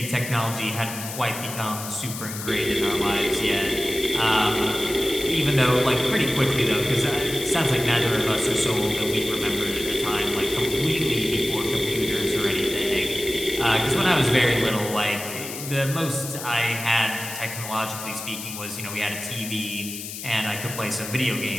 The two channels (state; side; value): noise; left; hiss, 9 dB below the sound